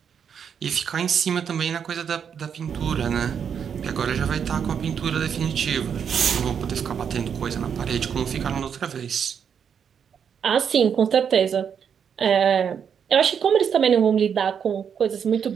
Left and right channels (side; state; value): left; quieter; 7.5 dB